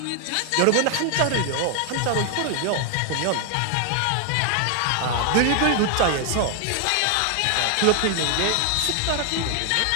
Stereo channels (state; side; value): different; both; correlation 0.00